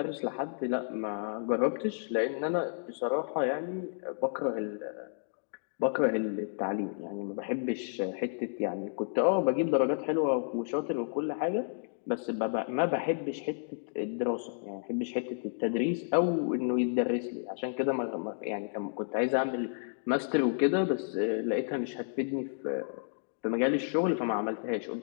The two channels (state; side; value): silent; right; digital silence